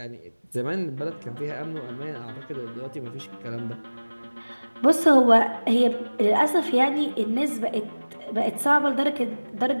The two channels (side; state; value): both; inverted; correlation -1.00